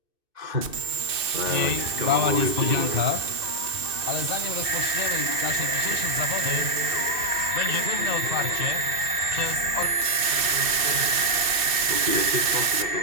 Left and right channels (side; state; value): left; late; 2.6 ms